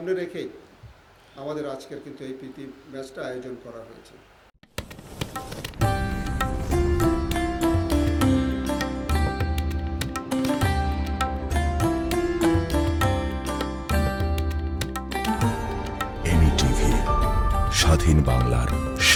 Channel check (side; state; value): both; identical; correlation 1.00